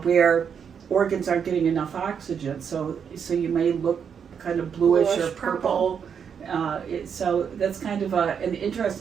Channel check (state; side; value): quieter; left; 7.2 dB